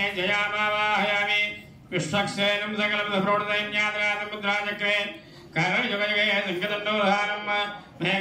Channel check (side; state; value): both; identical; correlation 1.00